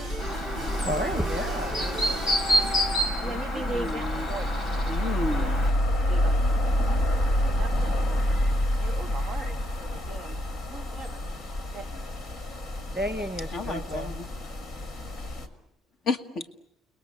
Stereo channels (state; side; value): normal; both; correlation 0.73